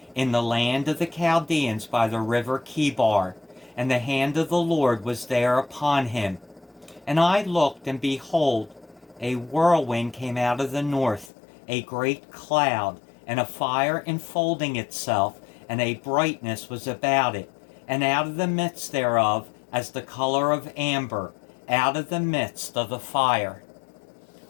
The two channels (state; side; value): drops out; right; at 11.3 s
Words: in the land of the Chaldeans by the river Chebar, and the hand of the Lord was there upon him. And I looked, and behold, a whirlwind came out of the north, a great cloud, and a fire enfolding itself, and a brightness was about it, and out of the midst thereof, as the color of amber, out of the midst of the fire.